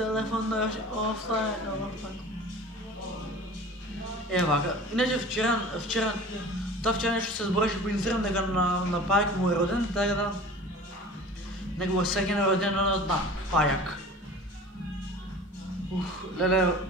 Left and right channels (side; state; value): both; normal; correlation 0.40